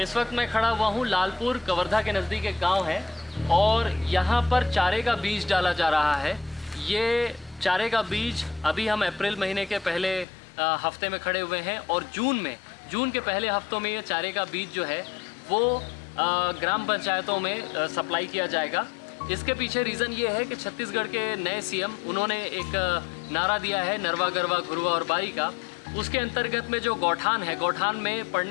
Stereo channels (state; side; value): drops out; right; at 10.2 s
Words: इस वक्त मैं खड़ा हुआ हूँ लालपुर कवर्धा के नज़दीक एक गांव है और यहाँ पर चारे का बीज डाला जा रहा है। ये चारे का बीज अभी हम अप्रैल महीने के पहले हफ्ते में खड़े हुए हैं और जून के पहले हफ्तों में ये चारे का बीज जो है वो ग्राम पंचायतों में सप्लाई किया जाएगा। इसके पीछे रीज़न ये है कि छत्तीसगढ़ के नए सीएम उन्होंने एक नारा दिया है नरवा गरवा घुरवा और बारी का। उसके अंतर्गत में जो गौठान है, गौठान में